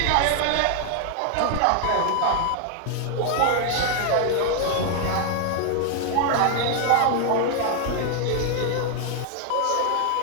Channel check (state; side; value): different; both; correlation 0.00